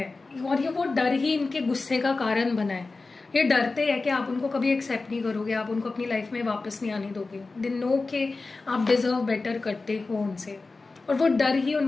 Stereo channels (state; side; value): quieter; right; 3.7 dB